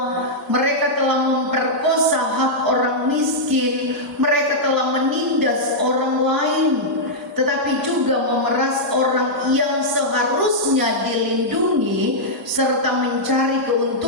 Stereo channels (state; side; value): normal; both; correlation -0.08